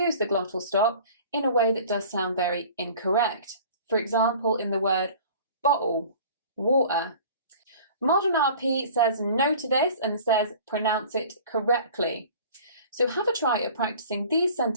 the glottal stop in a way that does sound very incorrect. For example, in the word bottle, water. Modern RP says no to this and says pronounce it correctly. So have a try at practicing these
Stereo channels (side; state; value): both; inverted; correlation -0.45